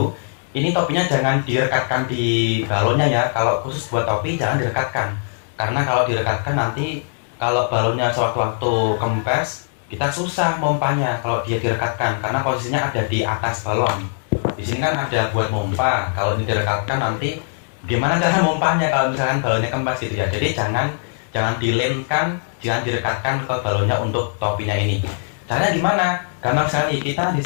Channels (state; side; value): silent; right; digital silence